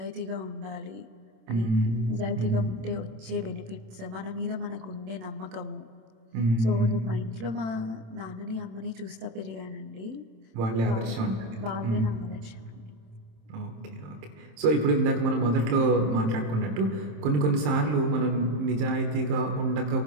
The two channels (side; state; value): left; late; 27 ms